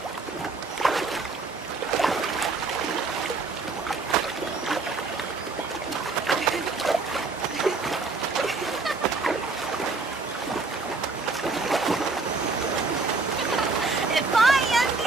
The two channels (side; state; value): left; quieter; 3.9 dB